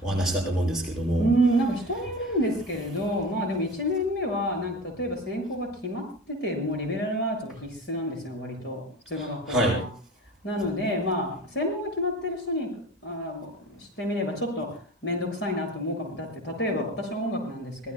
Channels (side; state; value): both; normal; correlation 0.33